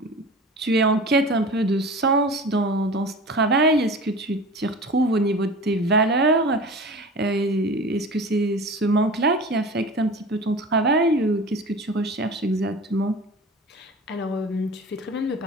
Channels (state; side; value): normal; both; correlation 0.36